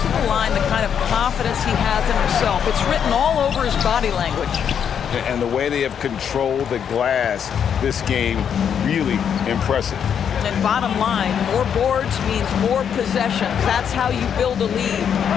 to the line the kind of confidence he has in himself. It's written all over his body language. And the way they have controlled the glass this game, really impressive. And bottom line, more boards means more possessions. That's how you build a lead.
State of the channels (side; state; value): right; quieter; 8.1 dB